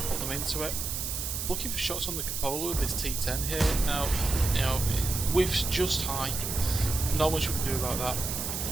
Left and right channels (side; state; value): right; noise; hiss, 3 dB below the sound